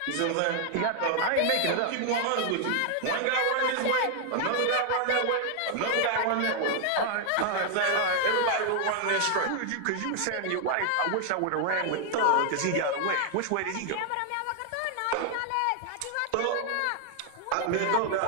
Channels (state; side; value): different; both; correlation 0.00